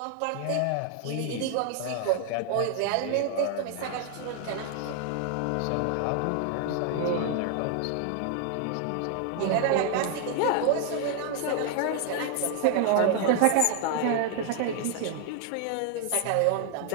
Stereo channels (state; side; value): different; both; correlation 0.00